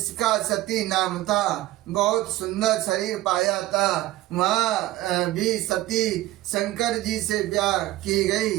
सती नाम था। बहुत सुंदर शरीर पाया था। वहाँ भी सती शंकर जी से ब्याह की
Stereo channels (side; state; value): left; quieter; 16.2 dB